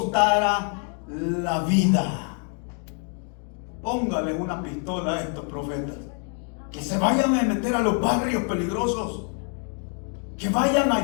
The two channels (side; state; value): right; quieter; 39.4 dB